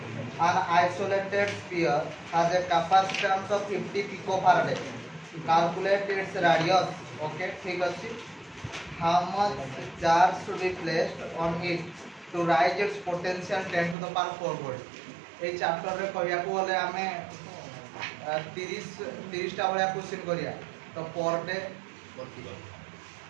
an isolated sphere has a capacitance of 50 picofarad, calculate its radius। Okay ठीक अछि। how much charge should be placed on it to rise its potential 10 to the power 4 volt। A chapter रे कहिया को बोले हमें 30 टा वाला क्वेश्चन करिया। तो पर डे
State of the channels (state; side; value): drops out; left; at 14.0 s